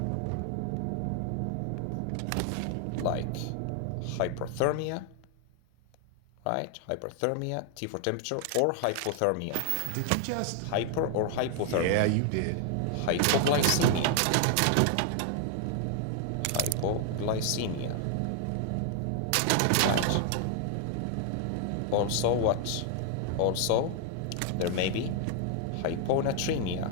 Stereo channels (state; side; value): different; both; correlation 0.00